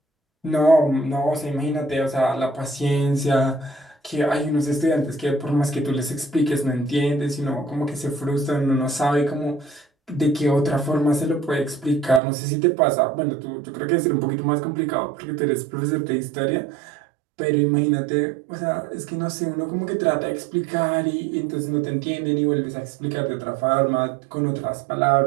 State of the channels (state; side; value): drops out; left; at 12.2 s